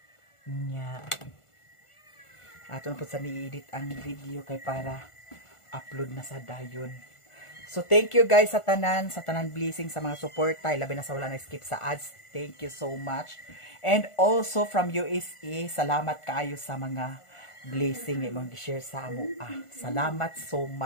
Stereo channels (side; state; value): right; late; 1.4 ms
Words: Nya. Ato na po sa ni-edit ang video kay para upload na sa dayon. So thank you guys sa tanan blessing sa mga suporta, labi na sa wala na skip sa ads. Thank you so much. And also from USA, salamat kaayo sa mga blessing nga imong gi-share sa amo. Salamat so